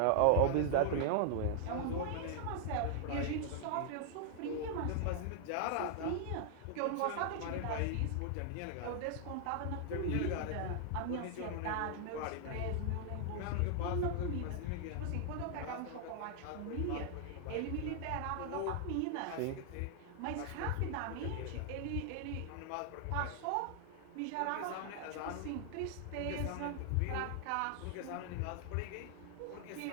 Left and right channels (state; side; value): different; both; correlation 0.00